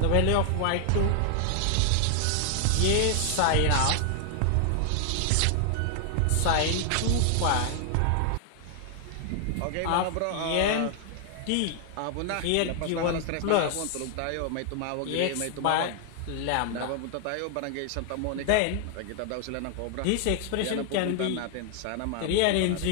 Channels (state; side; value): different; both; correlation 0.00